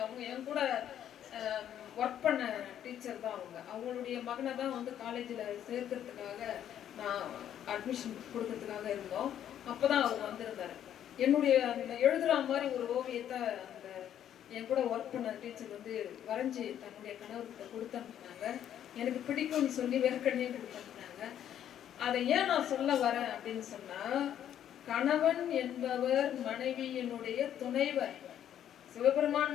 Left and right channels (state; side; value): quieter; right; 10.3 dB